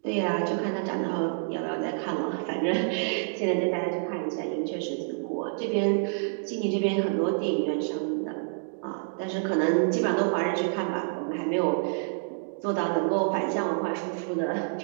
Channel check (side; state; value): left; silent; digital silence